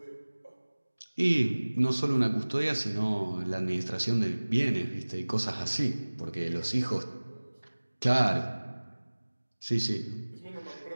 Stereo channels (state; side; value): inverted; both; correlation -1.00